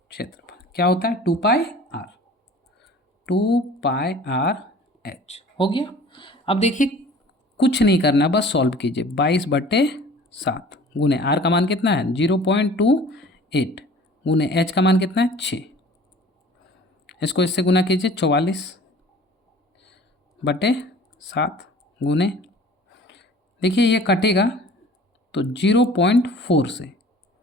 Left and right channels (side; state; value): both; normal; correlation 0.46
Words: क्या होता है, 2 पाई आर एच। हो गया। अब देखिए कुछ नहीं करना, बस सॉल्व कीजिए। 22/7 गुने आर का मान कितना है, 0.28 गुने एच का मान कितना है, 6। इसको इससे गुना कीजिए, 44/7 गुने, देखिए ये कटेगा तो 0.4 से,